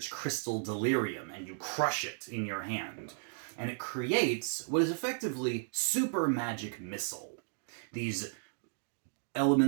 Crystal Delirium and you crush it in your hand, and it creates what is effectively super magic missile. These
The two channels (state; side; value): silent; left; digital silence